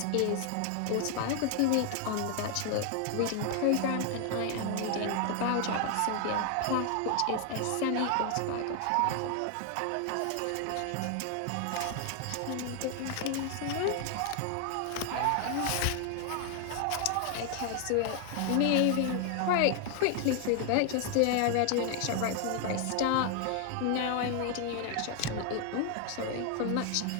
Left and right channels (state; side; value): different; both; correlation 0.00